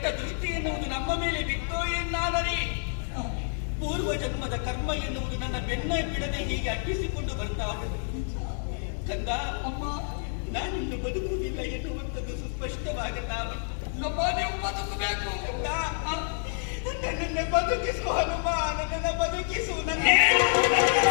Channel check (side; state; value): right; silent; 59 dB below the other